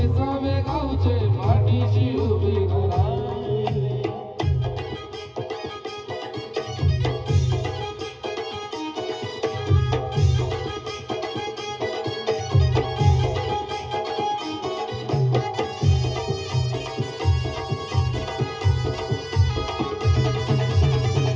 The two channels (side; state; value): both; identical; correlation 1.00